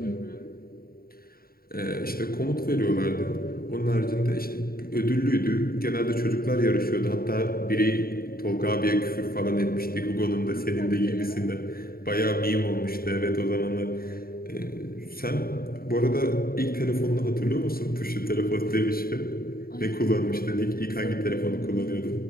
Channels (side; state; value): right; late; 0.43 ms